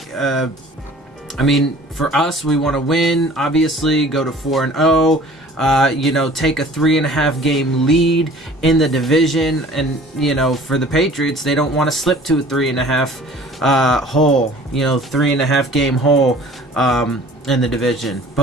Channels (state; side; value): normal; both; correlation 0.48